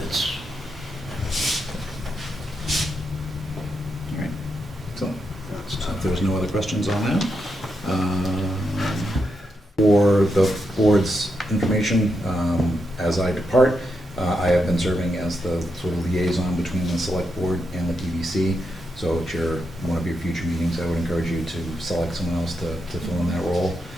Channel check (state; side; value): normal; both; correlation 0.84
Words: All right. So if there's no other questions on that. For the board's information, as I depart, I have been serving as the sort of liaison between the select board and the PBC. So at one of your future meetings, I would encourage you to select someone else to fill in that role.